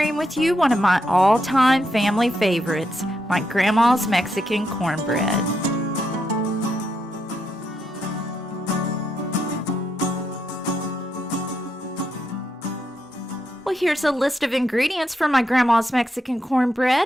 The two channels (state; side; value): normal; both; correlation 0.81